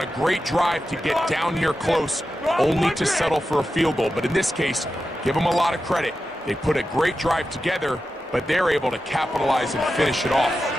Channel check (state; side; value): normal; both; correlation 0.91